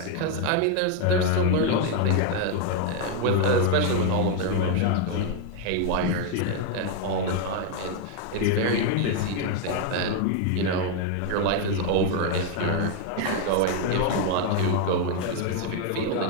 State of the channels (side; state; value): both; different; correlation 0.01